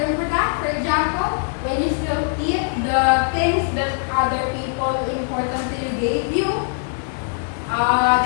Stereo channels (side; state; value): right; silent; 65 dB below the other